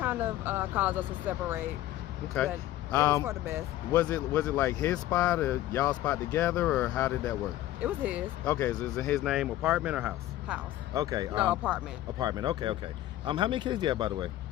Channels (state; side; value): quieter; right; 14.5 dB